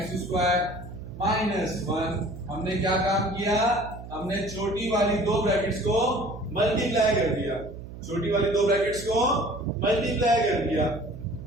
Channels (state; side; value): noise; right; hum, 13 dB below the sound